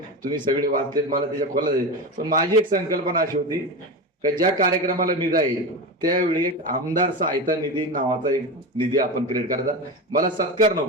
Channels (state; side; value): normal; both; correlation 0.22